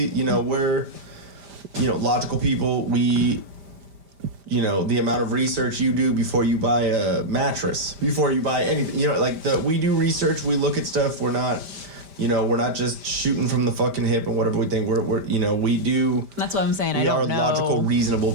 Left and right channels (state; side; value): late; left; 5.0 ms